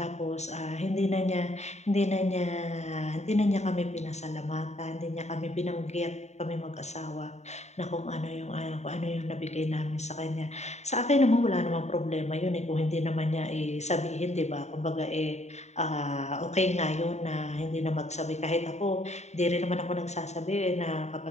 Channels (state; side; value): late; right; 0.32 ms